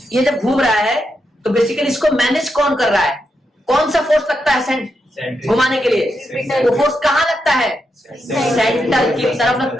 ये जब घूम रहा है तो बेसिकली इसको मैनेज कौन कर रहा है? कौन सा फोर्स लगता है घुमाने के लिए? वो फोर्स कहाँ लगता है? सेंटर की तरफ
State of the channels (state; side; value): normal; both; correlation 0.84